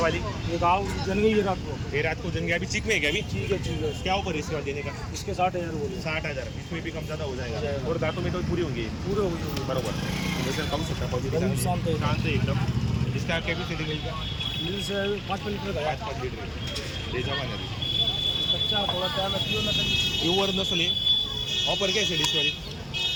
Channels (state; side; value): identical; both; correlation 1.00